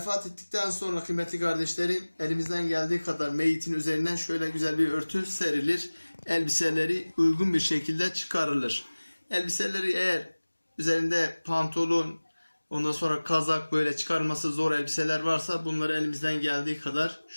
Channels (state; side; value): inverted; both; correlation -1.00